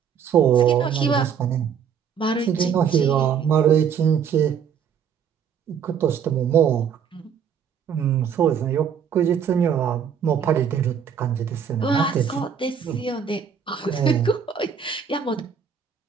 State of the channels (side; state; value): left; quieter; 7.5 dB